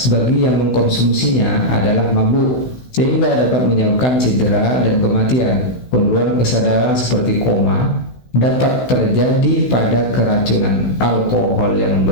bagi yang mengkonsumsinya adalah mabuk, sehingga dapat menyebabkan cedera dan kematian. Penurunan kesadaran seperti koma dapat terjadi pada keracunan alkohol yang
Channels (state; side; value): late; right; 16 ms